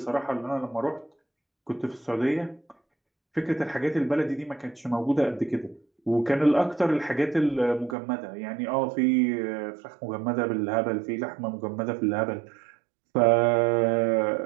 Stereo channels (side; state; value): left; drops out; at 8.0 s